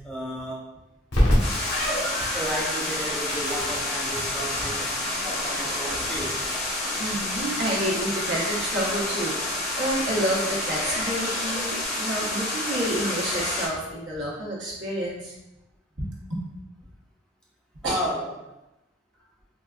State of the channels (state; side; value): normal; both; correlation 0.38